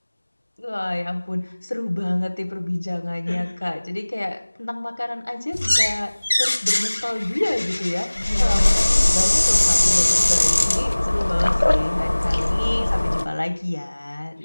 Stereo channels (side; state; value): both; inverted; correlation -1.00